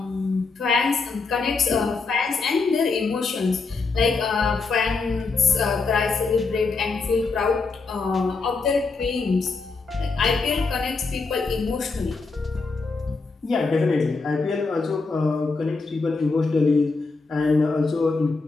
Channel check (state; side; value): quieter; right; 4.2 dB